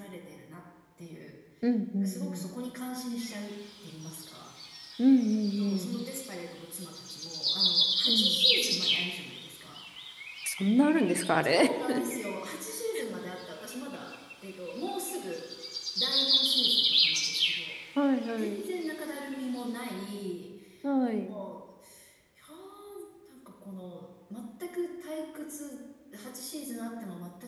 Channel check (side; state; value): both; identical; correlation 1.00